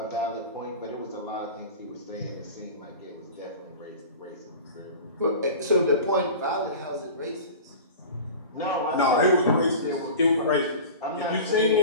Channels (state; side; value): inverted; both; correlation -0.35